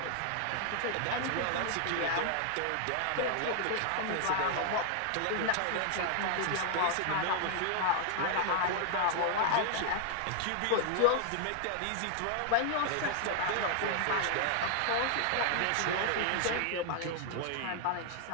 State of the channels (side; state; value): both; different; correlation 0.00